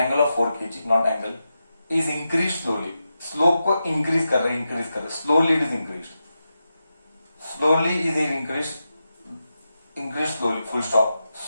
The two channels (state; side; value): inverted; both; correlation -0.89